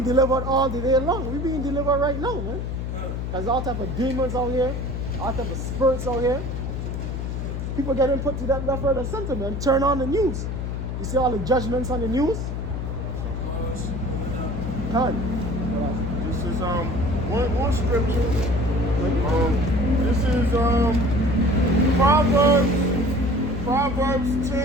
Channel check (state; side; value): noise; left; hum, 4 dB below the sound